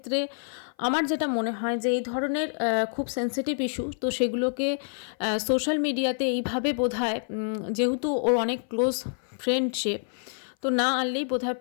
আমার যেটা মনে হয় যে এই ধরনের খুব সেন্সিটিভ ইস্যু, তো সেগুলোকে সোশ্যাল মিডিয়াতে এইভাবে বোধহয়, যেহেতু ওর অনেক ক্লোজ ফ্রেন্ড সে, তো না আনলেই বোধহয়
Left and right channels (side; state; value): right; silent; 56 dB below the other